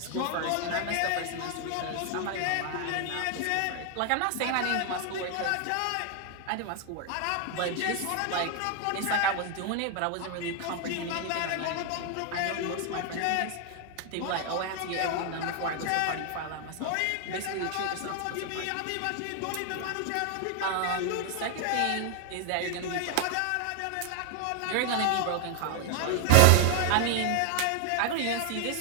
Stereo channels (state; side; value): different; both; correlation 0.00